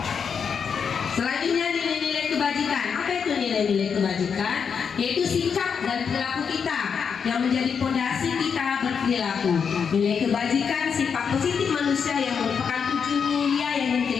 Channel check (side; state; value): right; quieter; 6.5 dB